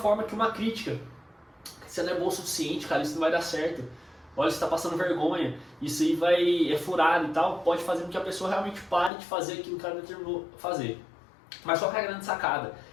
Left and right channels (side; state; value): right; drops out; at 9.1 s